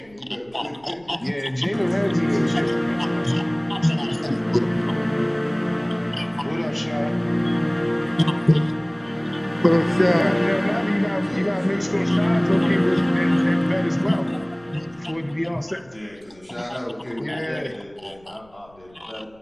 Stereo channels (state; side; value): noise; left; rumble, 29 dB below the sound